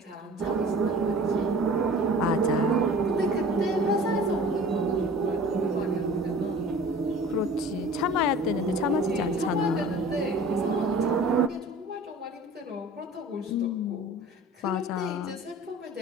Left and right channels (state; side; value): normal; both; correlation 0.43